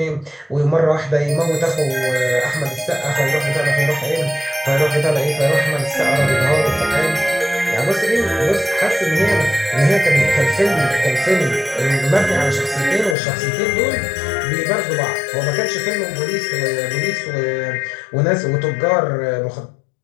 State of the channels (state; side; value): drops out; right; at 13.2 s